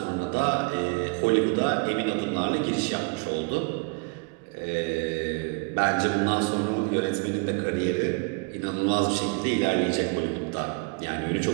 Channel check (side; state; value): left; quieter; 31.0 dB